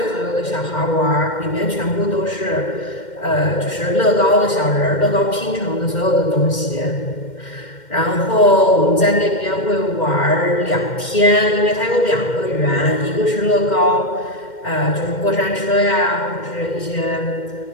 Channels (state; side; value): late; right; 2.1 ms